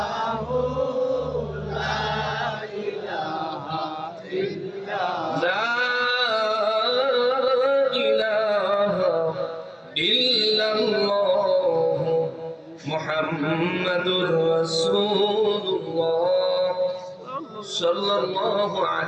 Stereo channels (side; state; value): both; identical; correlation 1.00